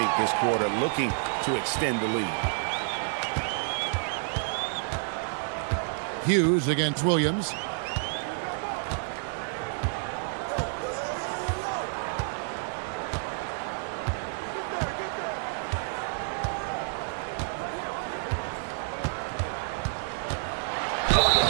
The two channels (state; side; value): silent; left; digital silence